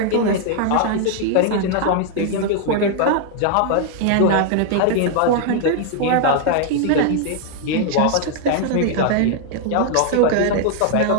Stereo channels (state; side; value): different; both; correlation 0.00